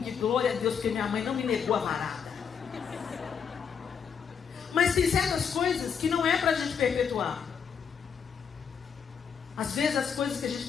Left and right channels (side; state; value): right; quieter; 6.9 dB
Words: glória a Deus, porque minha mãe não me negou a varada. Mas tem certas coisas que não é pra gente perpetuar. Às vezes as coisas que a gente